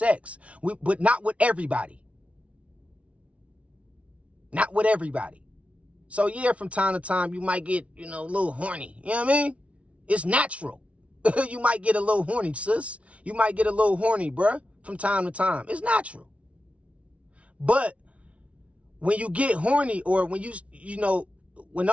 But not with everybody. Not with everybody. So yeah, from time to time, you might get, a little horny. You know what I mean? It's natural. You might get a little horny, sis. You might get a little horny, bruh, from time to time. It's natural. But when you get horny, or when when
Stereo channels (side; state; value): left; late; 0.063 ms